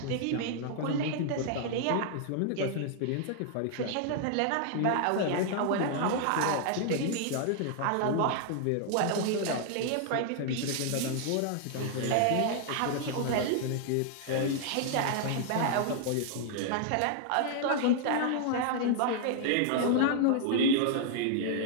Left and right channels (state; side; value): different; both; correlation 0.00